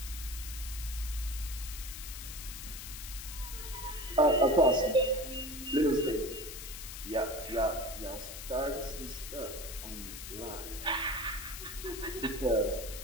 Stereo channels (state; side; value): noise; left; hiss, 9 dB below the sound